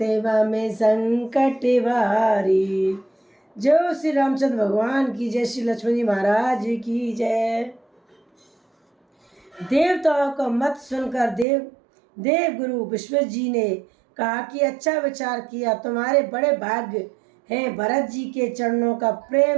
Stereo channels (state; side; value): drops out; left; at 11.5 s